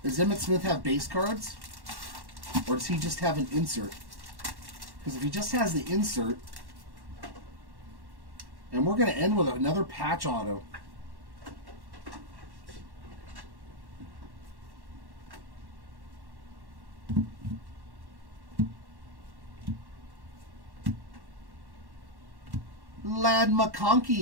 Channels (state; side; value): late; left; 1.1 ms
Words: Does Emmitt Smith have base cards? Or does he just have an insert? Because if he just has the insert, and we're going to end with another patch auto. Lad